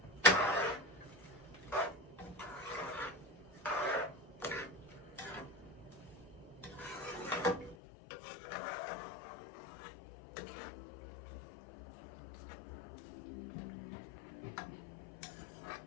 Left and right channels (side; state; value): right; drops out; at 7.8 s